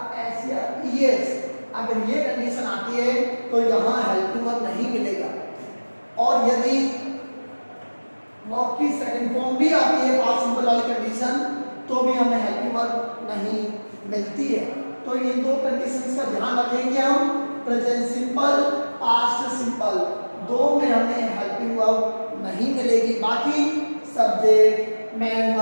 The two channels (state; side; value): inverted; both; correlation -1.00